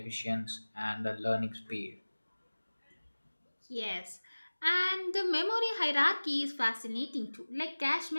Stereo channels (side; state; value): both; inverted; correlation -1.00